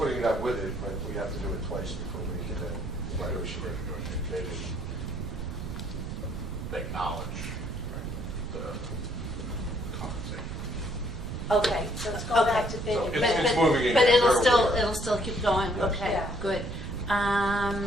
it out with it, but we have to do it twice before we can then negotiate. They didn't acknowledge the compensation. Okay. So let's go back to bid. So and- it's moving again. But We're aware. it'll still keep going, okay, Yeah. good.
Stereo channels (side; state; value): right; noise; rumble, 6 dB below the sound